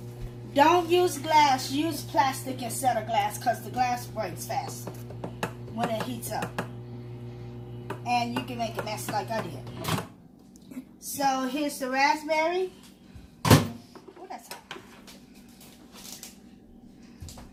Don't use glass. Use plastic instead of glass because the glass breaks fast when it heats up. And you can make a mess like I did. So here's the raspberry. Oh, that's hot.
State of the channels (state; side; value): identical; both; correlation 1.00